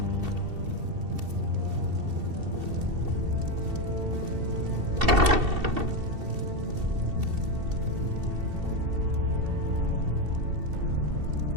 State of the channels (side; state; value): left; late; 2.7 ms